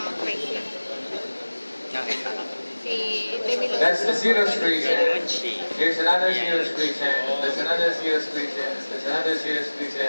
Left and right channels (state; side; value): inverted; both; correlation -1.00